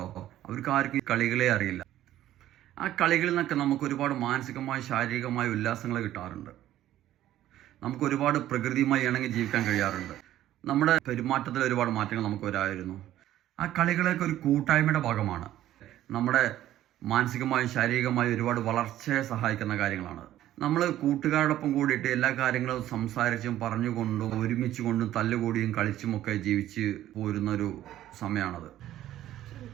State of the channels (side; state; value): left; quieter; 13.2 dB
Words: അവർക്ക് ആർക്കും കളികളെ അറിയില്ല. ആ കളികളിൽ നിന്നൊക്കെ നമുക്ക് ഒരുപാട് മാനസികമായ ശാരീരികമായ ഉല്ലാസങ്ങൾ കിട്ടാറുണ്ട്. നമുക്ക് ഒരുപാട് പ്രകൃതിയുമായി ഇണങ്ങി ജീവിക്കാൻ കഴിയാറുണ്ട്. നമ്മുടെ പെരുമാറ്റത്തിൽ ഒരുപാട് മാറ്റങ്ങൾ നമുക്ക് വരായിരുന്നു. ആ കളികളൊക്കെ ഒരു കൂട്ടായ്മയുടെ ഭാഗമാണ്. നമ്മുടെ മാനസികമായും ശാരീരികമായും ഒരുപാട് വളർച്ചയെ സഹായിക്കുന്ന കാര്യങ്ങളാണ്. നമ്മൾ കൂട്ടുകാരോടൊപ്പം കൂടിയിട്ട് എല്ലാ കാര്യങ്ങളും സംസാരിച്ചും പറഞ്ഞുകൊണ്ടും ഒരുമിച്ച് കൊണ്ടും തല്ലുകൂടിയും കളിച്ചുമൊക്കെ ജീവിച്ച് പോരുന്നൊരു സമയമാണത്.